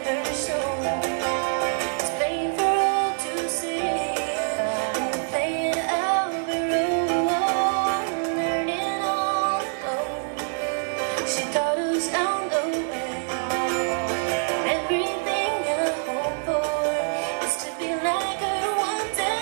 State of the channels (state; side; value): silent; left; digital silence